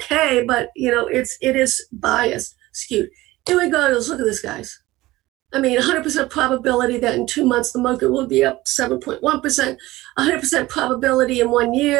but, it is biased, skewed. Here we go. Let's look at this, guys. I mean, 100% probability that in 2 months the market will be up 7.1%, 100% probability in 1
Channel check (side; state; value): left; quieter; 18.3 dB